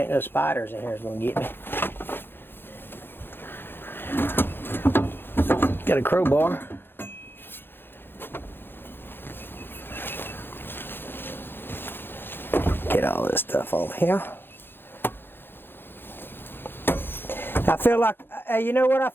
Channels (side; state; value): right; late; 0.10 ms